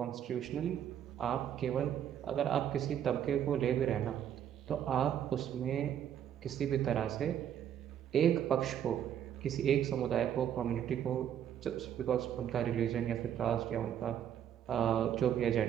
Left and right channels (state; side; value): quieter; left; 9.8 dB